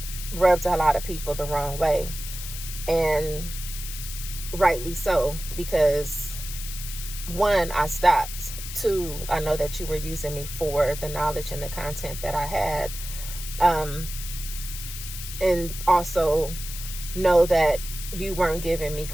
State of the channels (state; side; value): noise; left; hiss, 9 dB below the sound